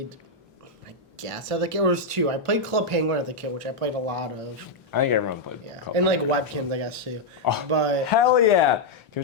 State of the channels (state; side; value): quieter; right; 3.1 dB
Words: I guess as a kid, was 2. I played Club Penguin as a kid, which I played a lot of. I think everyone played. Yeah, and webkins, I guess too. Oh, but hell yeah! Can we